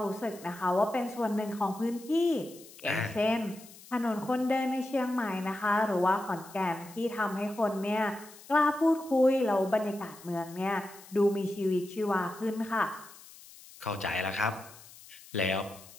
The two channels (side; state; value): left; noise; hiss, 20 dB below the sound